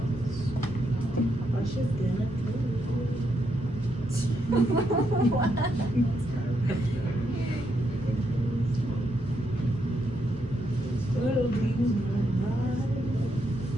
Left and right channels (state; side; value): normal; both; correlation 0.79